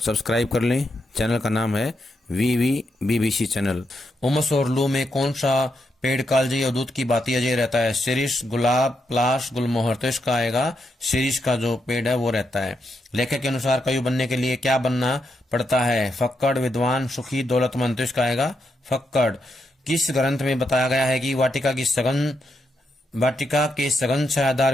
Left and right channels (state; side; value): normal; both; correlation 0.82